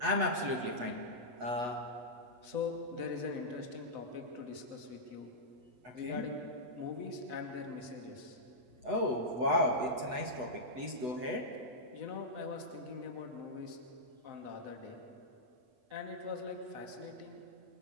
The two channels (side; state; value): left; late; 8.1 ms